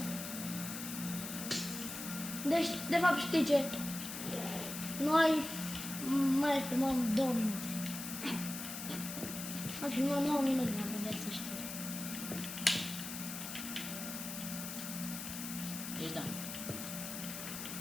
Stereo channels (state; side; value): noise; left; hiss, 7 dB below the sound